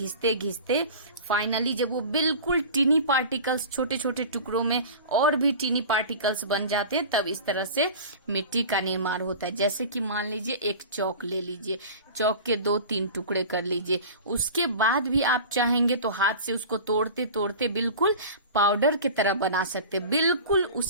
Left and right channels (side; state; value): both; inverted; correlation -0.36